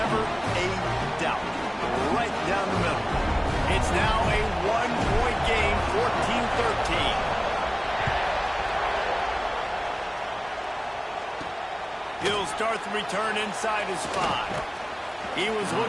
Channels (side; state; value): both; identical; correlation 1.00